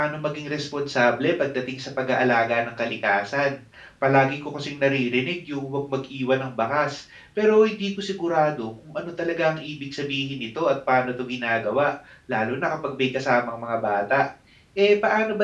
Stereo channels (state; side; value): identical; both; correlation 1.00